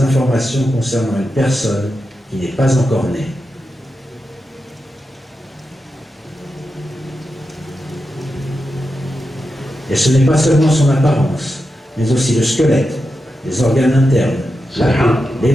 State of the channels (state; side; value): normal; both; correlation 0.89